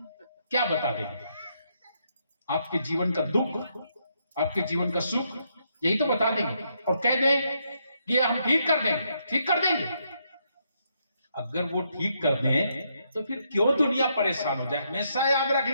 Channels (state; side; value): inverted; both; correlation -0.77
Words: क्या बता देंगे? आपके जीवन का दुख, आपके जीवन का सुख, यही तो बता देंगे, और कह दें कि हम ठीक कर देंगे। अगर वो ठीक कर दें तो फिर क्यों दुनिया परेशान हो जाए? हमेशा याद रख